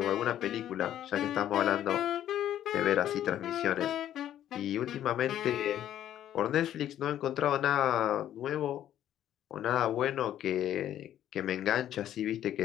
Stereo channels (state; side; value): quieter; right; 11.4 dB